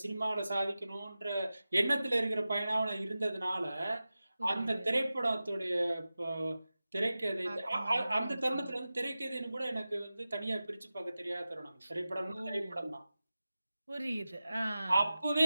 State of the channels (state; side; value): inverted; both; correlation -0.94